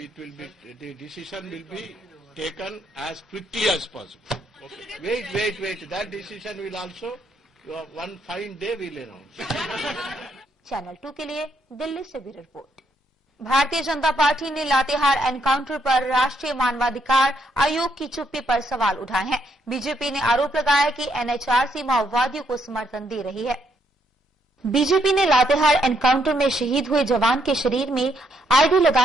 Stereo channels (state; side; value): normal; both; correlation 0.75